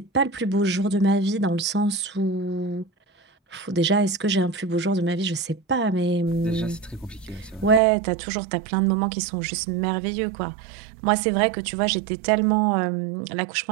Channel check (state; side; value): drops out; left; at 7.8 s